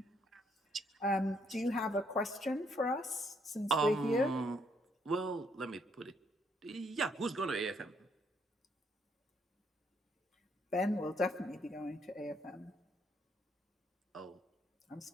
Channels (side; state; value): both; normal; correlation 0.71